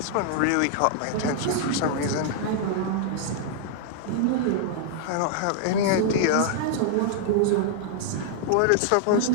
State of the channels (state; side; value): different; both; correlation -0.01